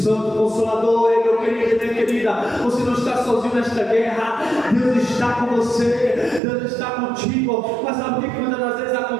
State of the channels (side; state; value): left; drops out; at 6.4 s